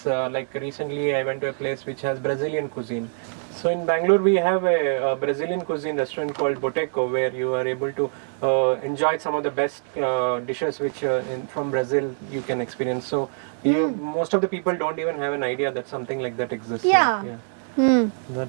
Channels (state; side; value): silent; left; digital silence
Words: like recently I went to a place which has Brazilian cuisine. So in Bangalore we have a Brazilian cuisine restaurant called Boteco, where you are able to enjoy some of the best dishes which from Brazil you can experience. So most of the people don't even have an idea that something like that exists. Yeah.